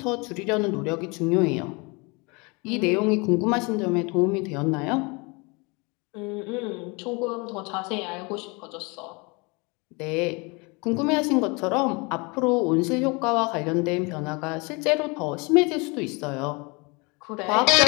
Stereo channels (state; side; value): quieter; right; 28.6 dB